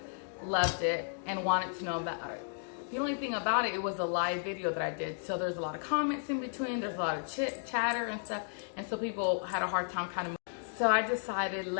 loved it and wanted to know about it. The only thing about it, it was a live video that I did, so there's a lot of comments in between, there's a lot of chatter and stuff, and so people had a hard time kind of. So I decided,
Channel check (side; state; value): right; silent; digital silence